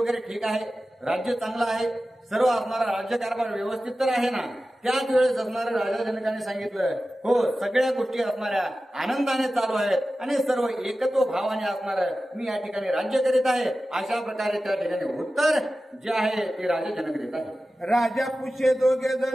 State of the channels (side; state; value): both; normal; correlation 0.94